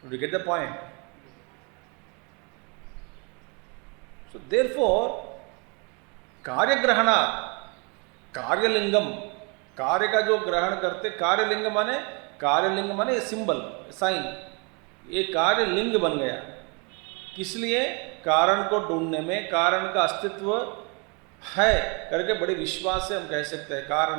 Did you get the point? So therefore, कार्य ग्रहणा, कार्यलिंगम, कार्य का जो ग्रहण करते, कार्यलिंग माने सिंबल, साइन, ये कार्यलिंग बन गया। किस लिए? कारण को ढूंढने में, कारण का अस्तित्व है करके बड़े विश्वास से हम कह सकते हैं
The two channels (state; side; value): quieter; left; 33.1 dB